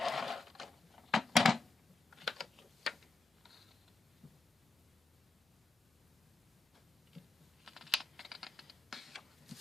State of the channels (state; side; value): quieter; right; 3.6 dB